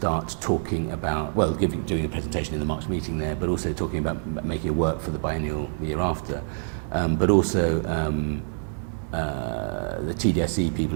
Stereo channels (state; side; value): silent; left; 61 dB below the other